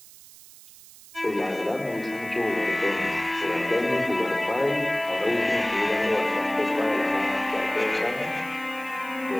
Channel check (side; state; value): right; noise; hiss, 20 dB below the sound